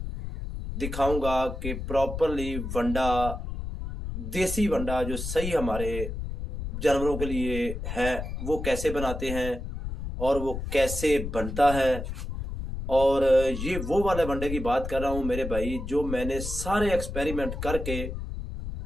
दिखाऊंगा कि प्रॉपरली वंडा, देसी वंडा जो सही हमारे जानवरों के लिए है वो कैसे बनाते हैं और वो कैसे बनता है। और ये वो वाले वंडे की बात कर रहा हूँ मेरे भाई, जो मैंने सारे एक्सपेरिमेंट करके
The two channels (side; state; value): left; noise; rumble, 6 dB below the sound